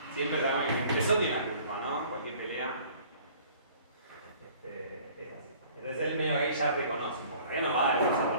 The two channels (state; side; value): inverted; both; correlation -0.52